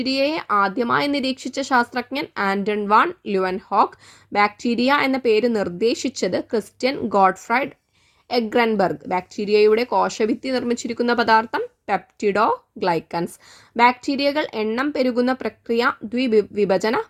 ആദ്യമായി നിരീക്ഷിച്ച ശാസ്ത്രജ്ഞൻ ആന്റൺ വാൻ ല്യൂവൻഹോക്ക്. ബാക്ടീരിയ എന്ന പേര് നിർദ്ദേശിച്ചത് ക്രിസ്റ്റ്യൻ ഗോഡ്ഫ്രൈഡ് എഗ്രൻബെർഗ്. ബാക്ടീരിയയുടെ കോശഭിത്തി നിർമ്മിച്ചിരിക്കുന്ന പദാർത്ഥം പെപ്റ്റിഡോഗ്ലൈക്കൻസ്. ബാക്ടീരിയകൾ എണ്ണം പെരുകുന്ന പ്രക്രിയ ദ്വിവിഭജന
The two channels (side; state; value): both; identical; correlation 1.00